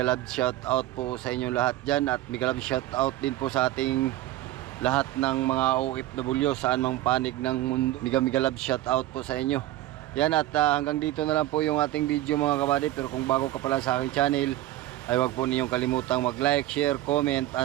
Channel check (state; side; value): quieter; left; 15.0 dB